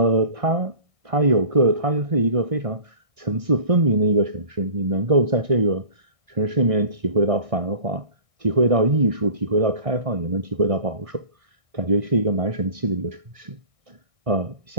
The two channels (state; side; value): late; left; 1.6 ms